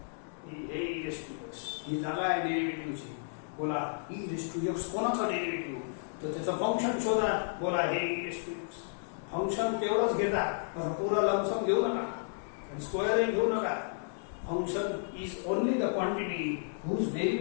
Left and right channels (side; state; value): right; silent; digital silence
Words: हे e रेस टू x ही जागा आहे डेरिव्हेटिव्हची. बोला e रेस टू x कोणाचं डेरिव्हेटिव्ह? तर त्याचं फंक्शन शोधा. बोला हे e raise to x function तेवढंच घेता, पुरा लमसम घेऊ नका आणि स्क्वेअर घेऊ नका. Function is only the quantity whose